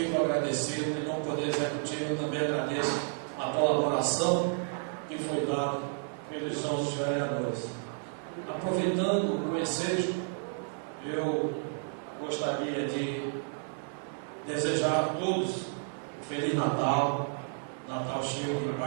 agradecido, em nome do Poder Executivo, eu também agradeço a colaboração que foi dada pelos nossos vereadores. Aproveitando o ensejo, eu gostaria de desejar a todos um Feliz Natal, Natal cheio de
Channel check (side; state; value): left; silent; 57 dB below the other